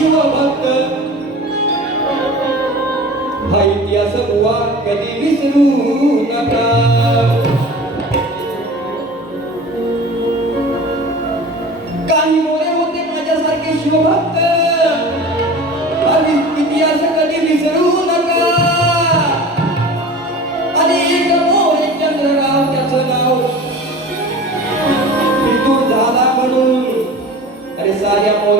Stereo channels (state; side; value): normal; both; correlation 0.38